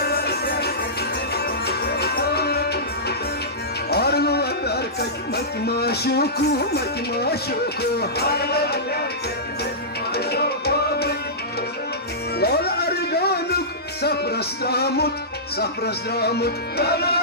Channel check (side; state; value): both; normal; correlation -0.17